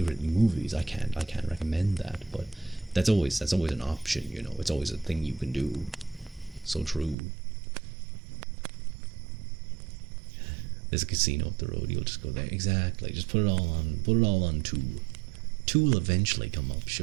movies. I can't recommend that, but that's always an option. It's always a thing you can do. So true. There's a casino up the road. You'll just go there. Exactly. Just put it all on 2. 2 will eventually come up.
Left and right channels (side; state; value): left; drops out; at 7.2 s